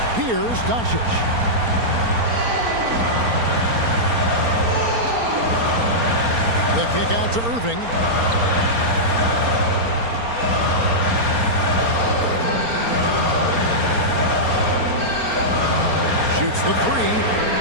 Here's Doncic. The kick out to Irving. Shoots the 3.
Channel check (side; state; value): left; late; 4.3 ms